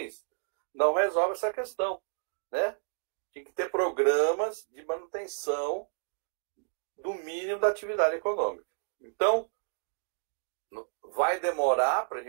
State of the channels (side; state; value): left; silent; digital silence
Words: não resolve essa questão, né? Tem que ter programas de manutenção do mínimo da atividade econômica. Então, vai demorar para a